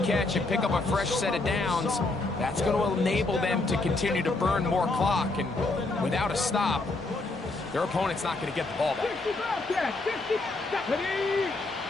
and pick up a fresh set of downs. That's going to enable them to continue to burn more clock. And without a stop, their opponent's not going to get the ball back. 50 Bobcat. 50 Stephanie.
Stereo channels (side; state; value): right; quieter; 3.2 dB